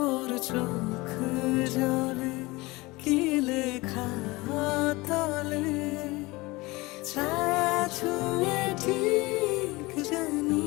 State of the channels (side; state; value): right; quieter; 22.3 dB